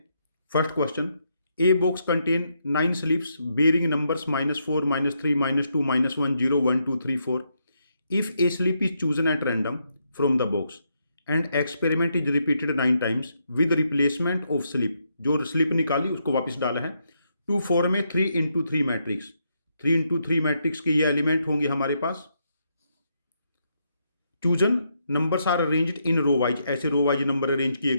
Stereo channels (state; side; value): inverted; both; correlation -0.79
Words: First question, A box contain 9 slips bearing numbers -4, -3, -2, -1, 0, 1, 2, 3, 4. If a slip is chosen at random from the box and experiment is repeated 9 times with replacement of slip, जो slip निकाली उसको वापस डाला है, to form में 3x3 matrix. 3x3 matrix के ये element होंगे हमारे पास। Chosen numbers are arranged in row wise, ऐसे रो वाइज नंबर अरेंज किए